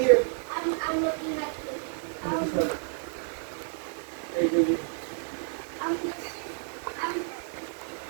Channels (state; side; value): silent; left; 58 dB below the other